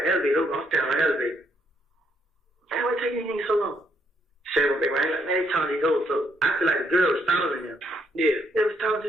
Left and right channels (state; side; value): normal; both; correlation 0.73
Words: the elevator open, I'm standing on the elevator. Man, why take these niggas so long? Shannon went back right, like, man, they talking these hoes, so I feel like the girl was stalling them. Yeah. They was talking